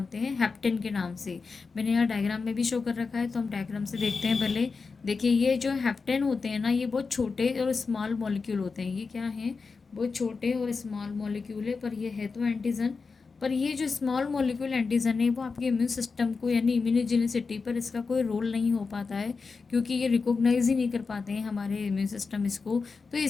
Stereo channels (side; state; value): right; quieter; 4.7 dB